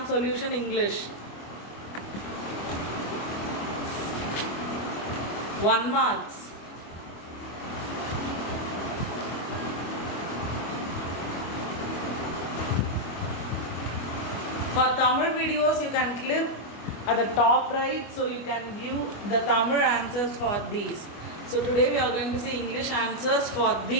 Solution English. 1 marks. For Tamil videos you can click at the top right so you can view the Tamil answers for these. So today we are going to see English answers for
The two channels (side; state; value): right; late; 24 ms